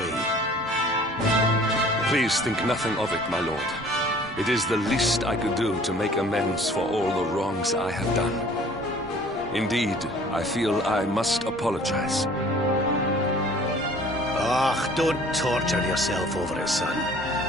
Please think nothing of it, my lord. It is the least I could do to make amends for all the wrongs I have done. Indeed, I feel I must apologize. Ah, don't torture yourself over it, son.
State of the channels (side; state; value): both; normal; correlation 0.51